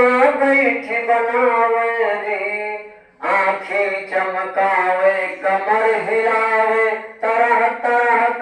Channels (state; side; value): identical; both; correlation 1.00